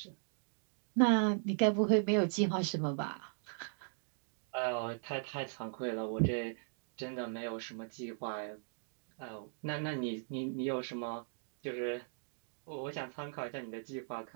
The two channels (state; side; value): silent; left; digital silence